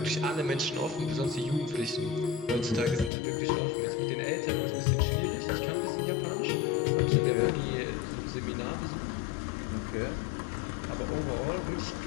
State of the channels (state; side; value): drops out; right; at 3.1 s